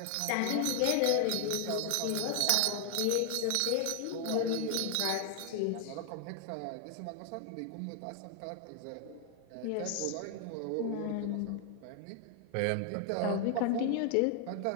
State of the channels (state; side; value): different; both; correlation 0.00